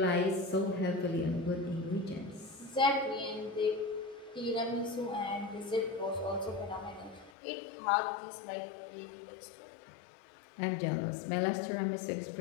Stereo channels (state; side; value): drops out; right; at 7.3 s